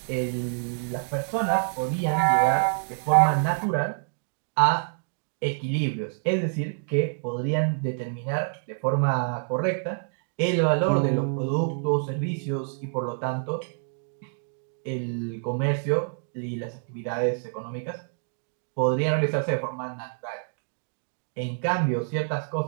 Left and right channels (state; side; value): silent; left; digital silence